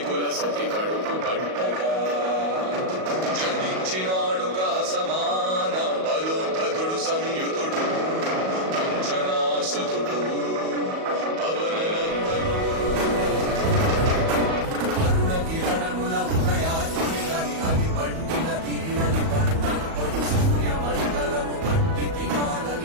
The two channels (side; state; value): left; late; 38 ms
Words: కుల సతి కడుపు పట్టగా జనించినాడు సమాన బలోధతుడు సంయుతుడు అంజనాసుతుడు పవననందనుడు అరుణగిరణముల ఉదయాన్ని అది పండిన తీరని పంటను పడు సూర్యమండలము పట్టి